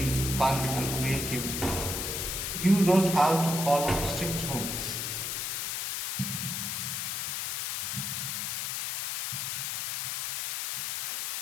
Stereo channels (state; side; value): noise; left; hiss, 2 dB below the sound